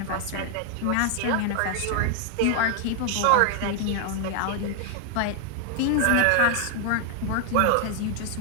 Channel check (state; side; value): different; both; correlation 0.00